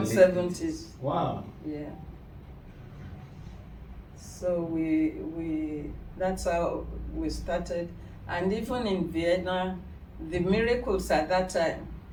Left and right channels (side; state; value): both; identical; correlation 1.00